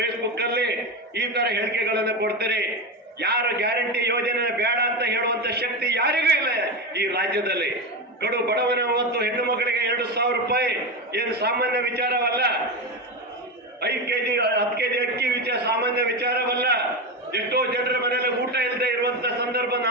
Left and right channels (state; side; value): normal; both; correlation 0.16